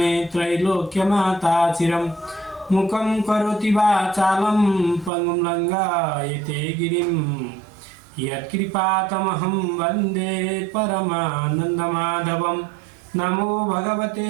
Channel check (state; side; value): drops out; left; at 5.1 s